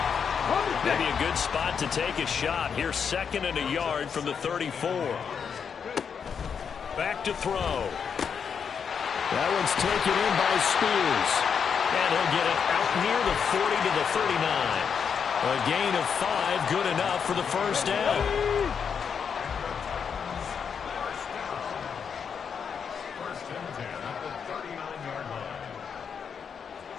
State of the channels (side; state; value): right; quieter; 6.8 dB